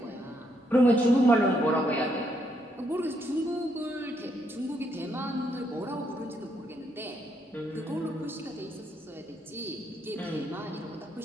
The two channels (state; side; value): normal; both; correlation 0.75